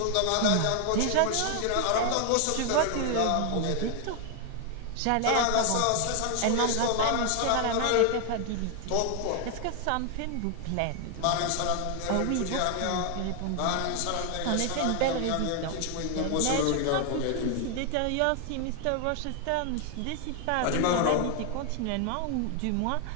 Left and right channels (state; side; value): different; both; correlation 0.00